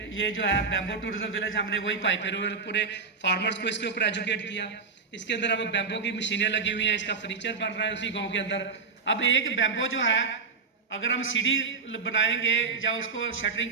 ये जो है बैम्बो टूरिज्म विलेज, हमने वही पाइपे पूरे फार्मर्स को इसके ऊपर एजुकेट किया। इसके अंदर अब बैम्बो की मशीनें लगी हुई हैं, इसका फर्नीचर बन रहा है उसी गांव के अंदर। अब एक बैम्बो जो है अगर हम सीढ़ी बनाएंगे या उसको शटरिंग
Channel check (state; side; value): quieter; left; 5.0 dB